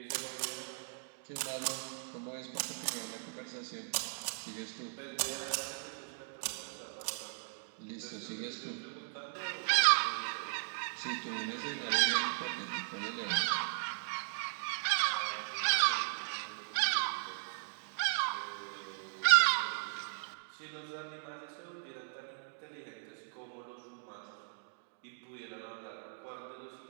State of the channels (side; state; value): left; silent; digital silence